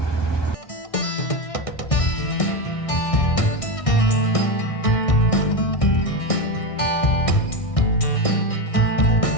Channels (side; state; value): right; late; 1.6 ms